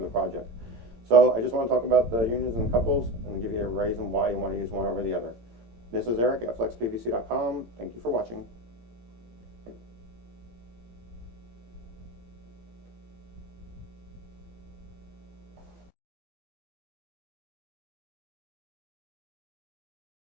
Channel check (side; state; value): left; late; 17 ms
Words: the project. So I just want to talk about the unions and the couples and give you a reason why you want to use one over the other. This is Eric at FlexPVC.com. Thank you for watching.